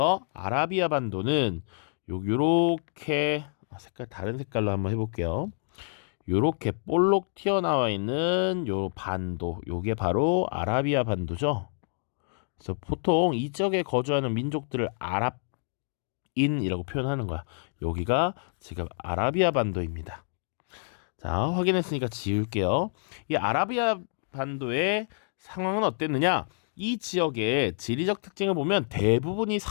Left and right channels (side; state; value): right; silent; digital silence